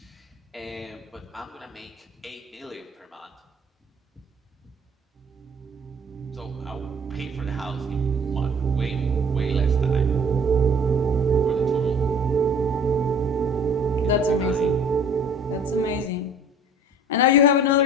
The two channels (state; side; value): normal; both; correlation 0.50